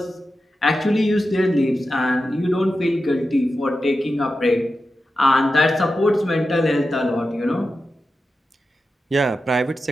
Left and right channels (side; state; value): both; normal; correlation 0.91